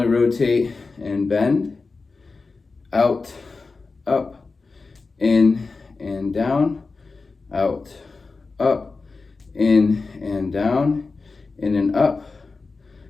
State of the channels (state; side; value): quieter; right; 4.1 dB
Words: rotate and bend, out, up, in and down, out, up, in and down, in and up,